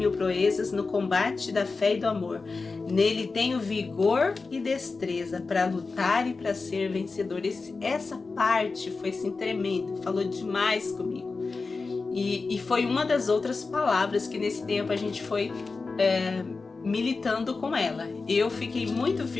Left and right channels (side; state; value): right; quieter; 4.1 dB